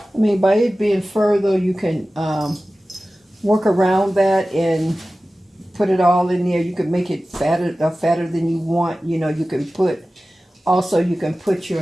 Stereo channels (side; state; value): both; normal; correlation 0.96